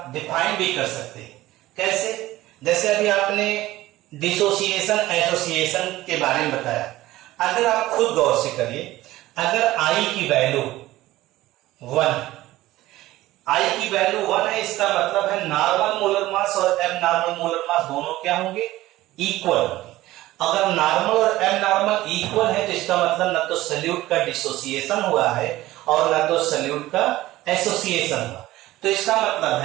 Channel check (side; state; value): left; quieter; 16.6 dB